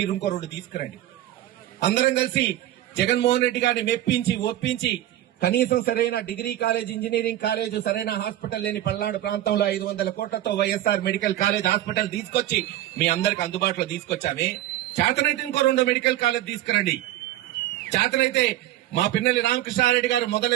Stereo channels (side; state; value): left; quieter; 13.9 dB